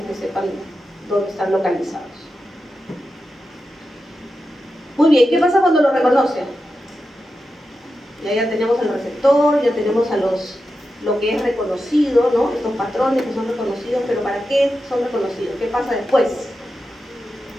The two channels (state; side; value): normal; both; correlation 0.90